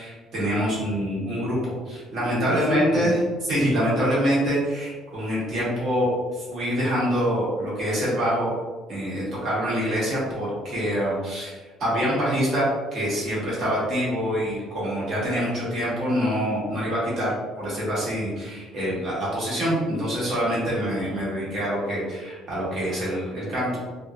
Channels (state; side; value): normal; both; correlation 0.64